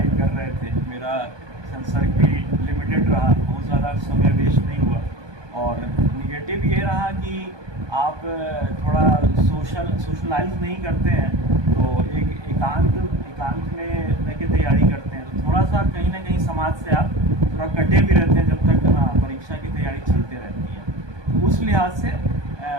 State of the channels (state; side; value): late; left; 1.2 ms